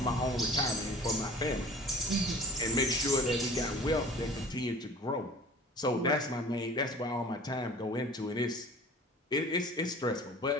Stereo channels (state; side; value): normal; both; correlation 0.44